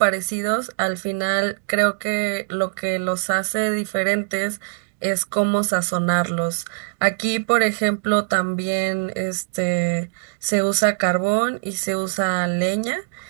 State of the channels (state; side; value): silent; left; digital silence